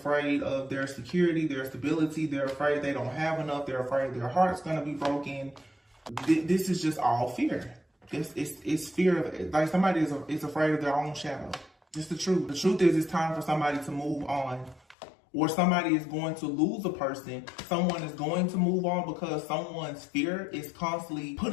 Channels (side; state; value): right; drops out; at 15.0 s